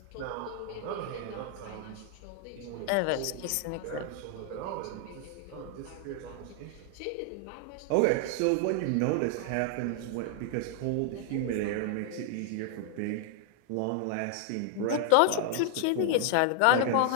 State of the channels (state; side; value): different; both; correlation 0.00